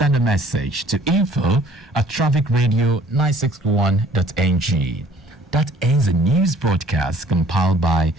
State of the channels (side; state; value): both; normal; correlation 0.56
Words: a message to info@trafficradio961.ng. That ends the news broadcast compiled by